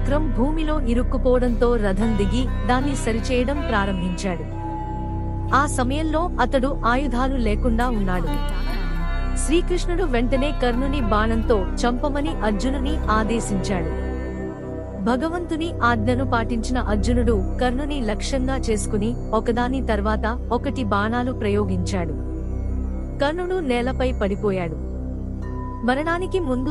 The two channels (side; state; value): both; identical; correlation 1.00